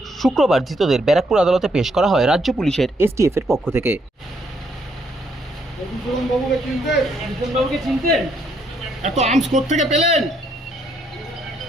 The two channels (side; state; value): both; normal; correlation 0.72